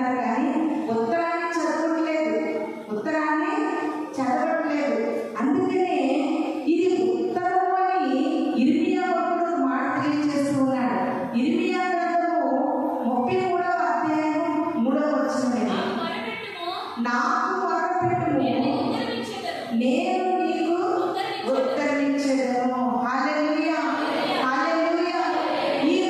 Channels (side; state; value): both; identical; correlation 1.00